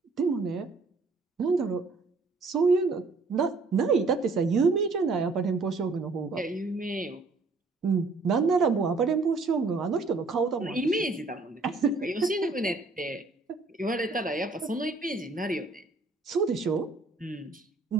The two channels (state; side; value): quieter; left; 3.7 dB